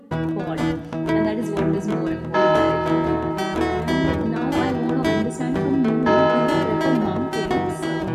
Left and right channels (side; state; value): both; identical; correlation 1.00